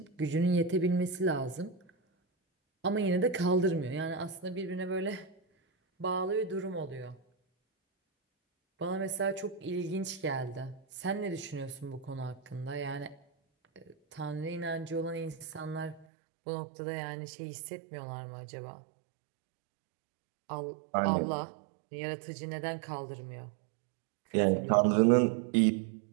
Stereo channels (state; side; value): drops out; left; at 16.1 s